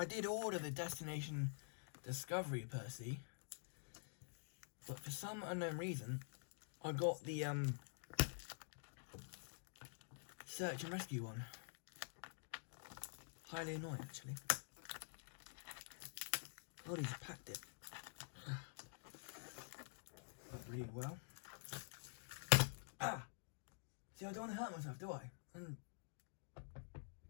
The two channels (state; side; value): silent; right; digital silence